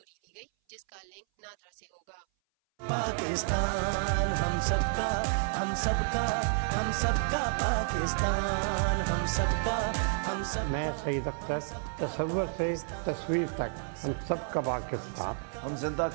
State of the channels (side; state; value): left; silent; 57 dB below the other